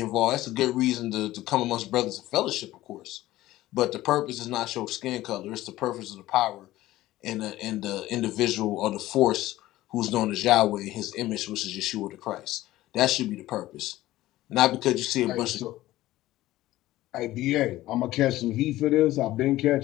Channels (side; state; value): right; quieter; 16.0 dB